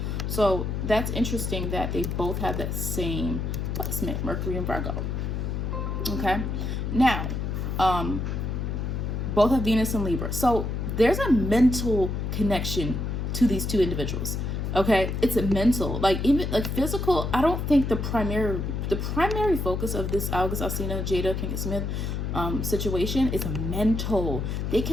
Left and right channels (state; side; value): noise; left; hum, 2 dB below the sound